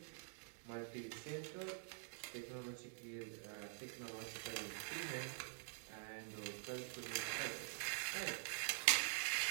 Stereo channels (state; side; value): silent; left; digital silence